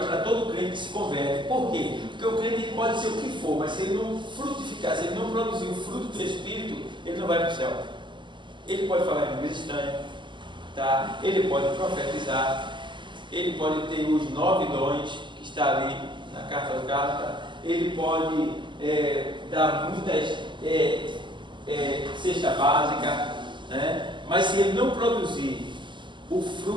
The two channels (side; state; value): left; late; 0.23 ms